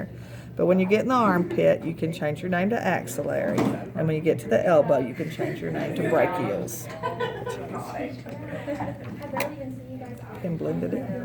But when you get in the armpit, you can change your name to axillary. And when you get to the elbow, you can change your name to brachials. And blend it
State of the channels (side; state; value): both; identical; correlation 1.00